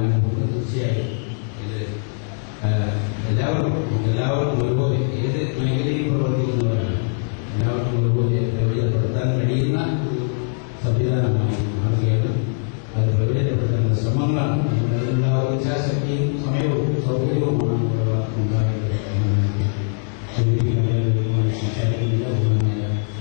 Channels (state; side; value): silent; right; 59 dB below the other